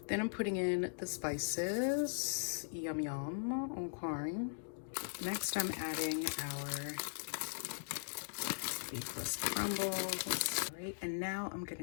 Then I'm putting in the spices. Yum yum. Okay. Next I'm adding our beefless crumbles. All right, and now I'm gonna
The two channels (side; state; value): right; silent; digital silence